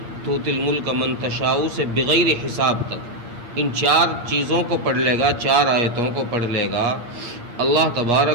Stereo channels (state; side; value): late; left; 8.5 ms